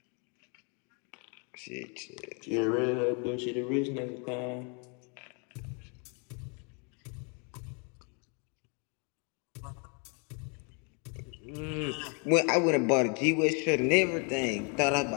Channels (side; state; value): right; quieter; 36.3 dB